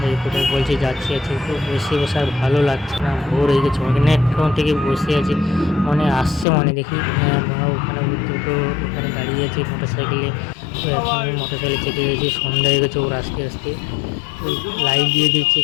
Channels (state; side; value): drops out; right; at 6.5 s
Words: কোথায় বলছি যাচ্ছি আছি, তো বসে আর ভালো লাগছে না, বোর হয়ে গেছে অনেকক্ষণ থেকে বসে আছি। মনে আসছে মনে দেখি ওখানে দুটো ওখানে দাঁড়িয়ে আছে মোটর সাইকেলে, তো এখন মোটর সাইকেলে চেপে গেছি, সন্ধ্যা হয়ে গেছে। ওর আস্তে আস্তে লাইট দিয়ে দিচ্ছে,